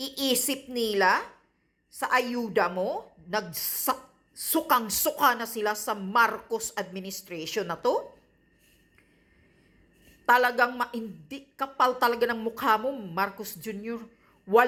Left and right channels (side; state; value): both; identical; correlation 1.00